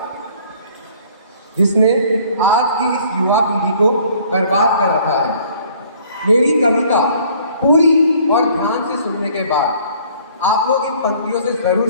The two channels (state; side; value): inverted; both; correlation -0.56